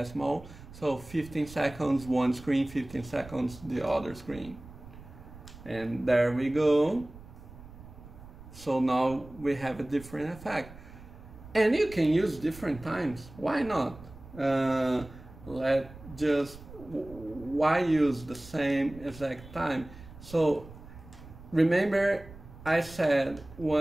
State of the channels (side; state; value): right; noise; rumble, 18 dB below the sound